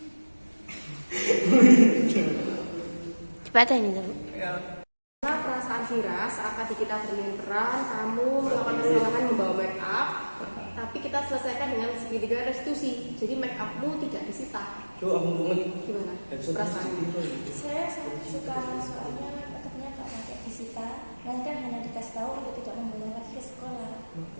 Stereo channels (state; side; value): inverted; both; correlation -1.00